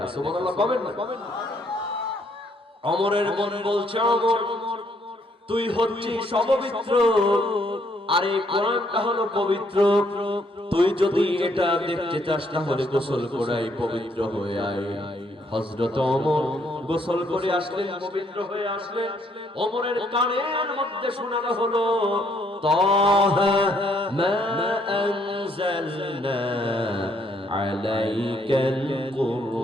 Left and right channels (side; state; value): both; normal; correlation 0.69